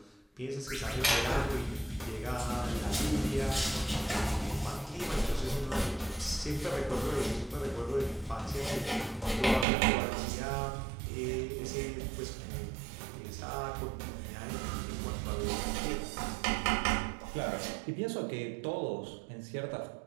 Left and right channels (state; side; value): drops out; left; at 9.7 s